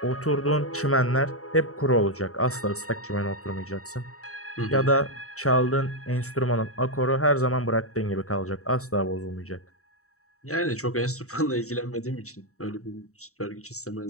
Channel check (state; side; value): late; right; 0.64 ms